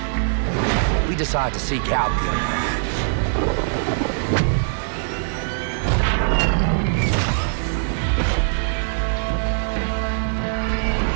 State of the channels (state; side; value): silent; left; digital silence